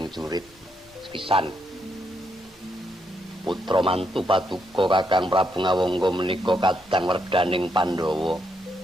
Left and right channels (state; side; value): normal; both; correlation 0.78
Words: jurit pisan. Putra mantu Paduka Kakang Prabu Ngawangga menika kadang werdaning Pandhawa.